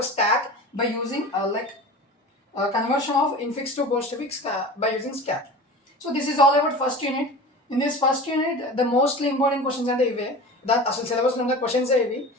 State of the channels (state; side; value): normal; both; correlation 0.35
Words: stack by using conversion of infix to postfix by using stack. So this is all about first unit. In this first unit the mostly important questions అంటే ఇవే. అసలు సిలబస్లో ఉన్న questions